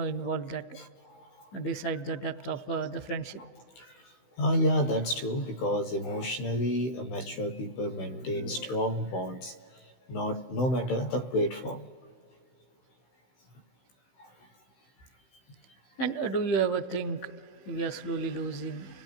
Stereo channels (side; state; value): right; late; 16 ms